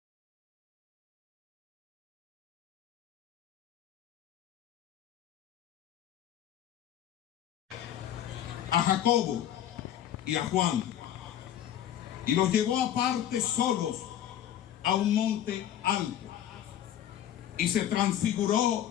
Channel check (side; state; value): right; quieter; 11.0 dB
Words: A Jacobo y a Juan, y los llevó aparte solos a un monte alto, y se